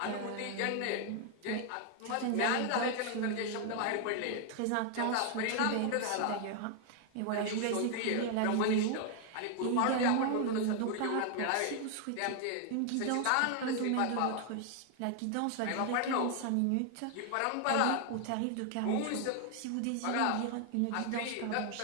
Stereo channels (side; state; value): both; different; correlation 0.00